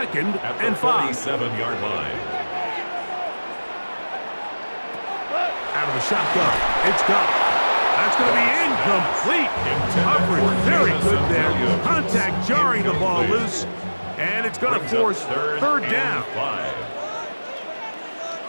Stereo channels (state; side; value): inverted; both; correlation -1.00